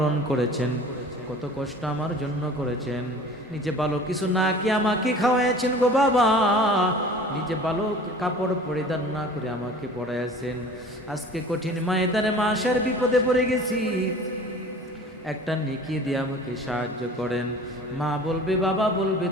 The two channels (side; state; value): both; normal; correlation 0.44